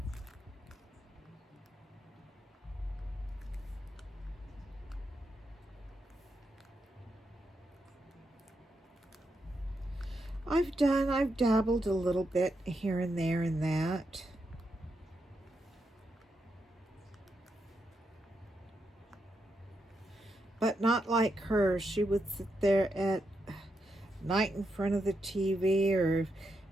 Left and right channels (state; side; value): normal; both; correlation 0.83